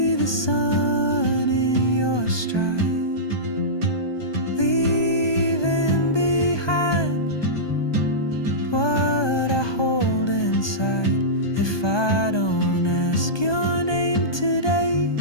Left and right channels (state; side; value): late; right; 1.2 ms